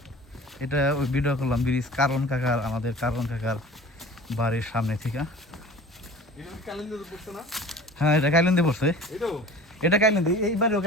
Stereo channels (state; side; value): normal; both; correlation 0.42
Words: এটা ওই ভিডিও করলাম ব্রিজ কারণ কাকার, আমাদের কারণ কাকার বাড়ির সামনে থেকে। হ্যাঁ, এটা কাইলেন্দি পড়ছে, এটা কাইলেন্দি, এই বাড়িও